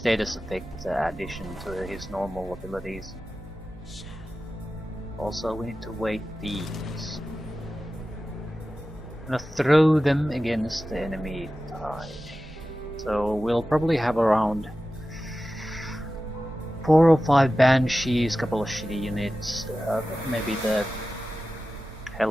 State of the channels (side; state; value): both; normal; correlation 0.94